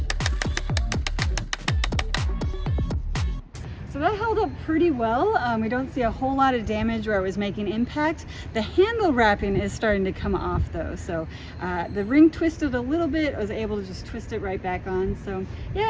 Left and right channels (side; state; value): both; identical; correlation 1.00